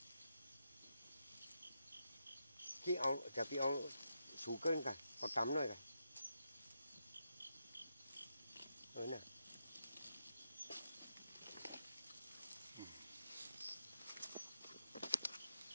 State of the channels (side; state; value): both; inverted; correlation -0.84